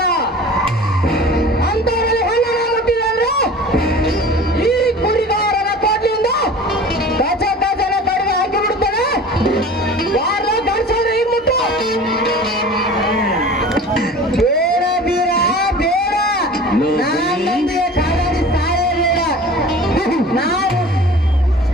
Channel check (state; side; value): normal; both; correlation 0.40